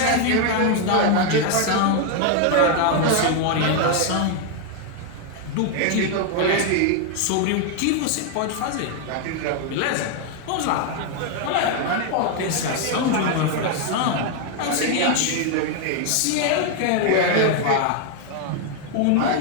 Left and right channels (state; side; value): different; both; correlation 0.01